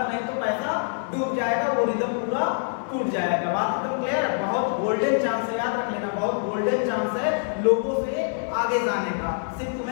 नहीं तो पैसा डूब जाएगा, वो रिदम पूरा टूट जाएगा। बात एकदम क्लियर है। बहुत गोल्डन चांस है, याद रख लेना, बहुत गोल्डन चांस है लोगों से आगे जाने का। सिर्फ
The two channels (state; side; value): silent; right; 56 dB below the other